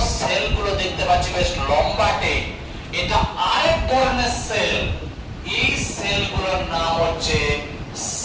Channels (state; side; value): identical; both; correlation 1.00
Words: সেল গুলো দেখতে পাচ্ছি বেশ লম্বাটে, এটা আরেক ধরনের সেল। এই সেলগুলোর নাম হচ্ছে